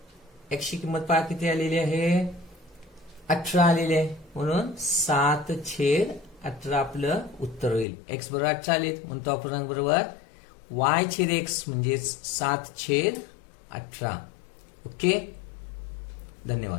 x ची किंमत पहा किती आलेली आहे 18 आलेली आहे, म्हणून 7/18 आपलं उत्तर होईल. x बरोबर 18 आले, म्हणून तो अपूर्णांक बरोबर y/x म्हणजे 7/18. ओके,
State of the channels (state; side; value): drops out; right; at 7.9 s